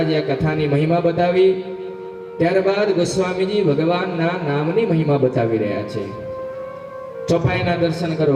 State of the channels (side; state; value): both; identical; correlation 1.00